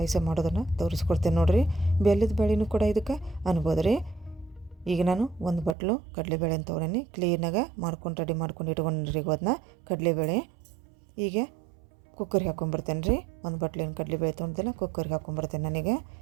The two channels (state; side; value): drops out; left; at 5.8 s